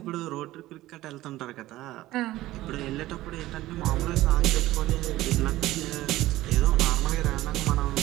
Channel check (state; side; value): quieter; left; 16.4 dB